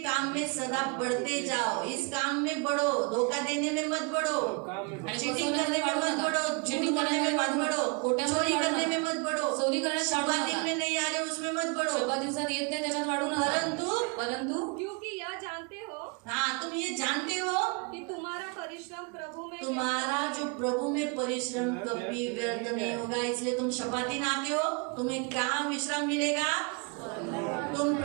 काम में सदा बढ़ते जाओ. इस काम में बढ़ो, धोखा देने में मत बढ़ो, काम में आणि चीटिंग करने में मत बढ़ो, चीटिंग करने में मत बढ़ो, चोरी करने में मत बढ़ो, चोरी करायला शब्दात में नहीं आ रहे उसमें मत बढ़ो. शोभा दिवसात येत नाही त्याच्यात वाढू नका. परंतु क्योंकि यह जानते हो हाँ, तुम ये जानते हो कि तुम्हारा परिश्रम प्रभु में तुम्हारा जो प्रभु में परिश्रम कभी व्यर्थ नहीं होगा. इसलिए तुम शपाती नाते हो, तुम्हें कहाँ विश्राम मिलेगा? तुम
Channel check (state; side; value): quieter; left; 32.9 dB